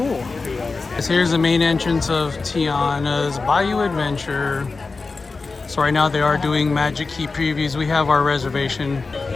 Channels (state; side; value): quieter; right; 4.0 dB